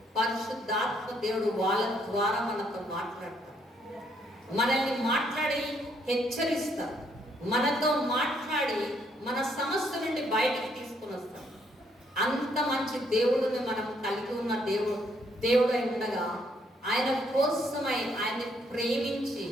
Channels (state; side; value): normal; both; correlation 0.70